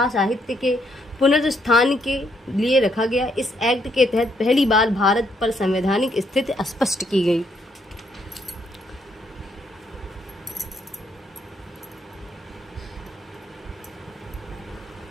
साहित्य के पुनरुत्थान के लिए रखा गया। इस एक्ट के तहत पहली बार भारत पर संवैधानिक स्थिति स्पष्ट की गई। –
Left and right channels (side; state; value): both; normal; correlation 0.73